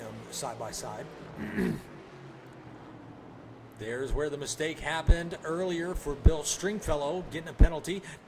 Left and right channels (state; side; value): identical; both; correlation 1.00